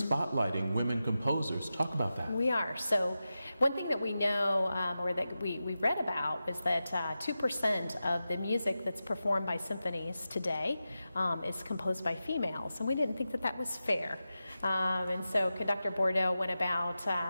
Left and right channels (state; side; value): inverted; both; correlation -0.92